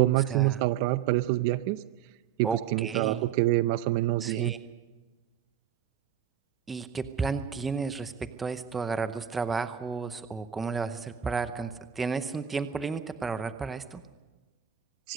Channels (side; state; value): left; quieter; 9.4 dB